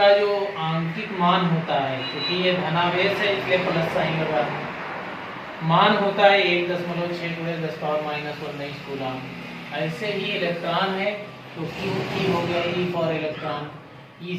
जो आंतरिक मान होता है, क्योंकि ये धनावेश है इसलिए प्लस साइन लगा है, मान होता है 1.6 × 10⁻⁻⁰ कूलम। ऐसे ही इलेक्ट्रॉन है तो क्यू की हो गया ई फॉर इलेक्ट्रॉन,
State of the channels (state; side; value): identical; both; correlation 1.00